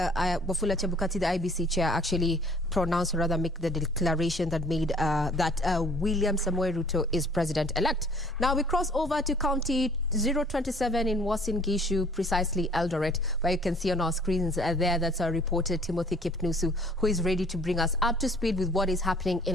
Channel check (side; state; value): both; normal; correlation 0.55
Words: Chebukati, the IBC chair, actually pronounce, or rather make the declaration that made that William Samoei Ruto is president-elect. Now we cross over to County 027 in Uasin Gishu, precisely Eldoret, where you can see on our screens there, that's our reporter Timothy Kipnusu, who is ready to bring us up to speed with what is happening